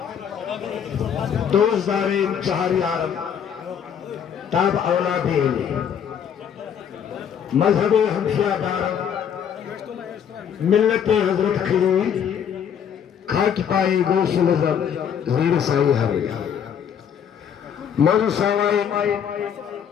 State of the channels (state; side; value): quieter; right; 8.2 dB